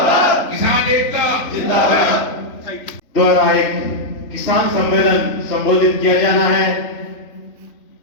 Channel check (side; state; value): right; late; 3.5 ms